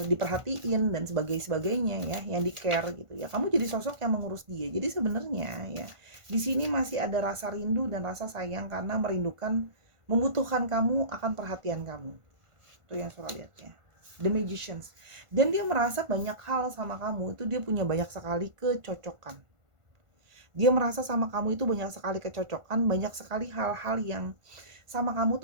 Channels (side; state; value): left; late; 1.5 ms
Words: diperhatiin dan sebagainya ya, yang di care gitu ya. Kamu jadi sosok yang mengurus dia. Jadi sebenarnya ya di sini masih ada rasa rindu dan rasa sayang karena membutuhkan kamu akan perhatian kamu. Itu yang Sora lihat ya. The Magicians. Dan dia merasa banyak hal sama kamu itu dia punya banyak sekali kecocokan. Dia merasa sama kamu itu banyak sekali kecocokan, banyak sekali hal-hal yang sama kamu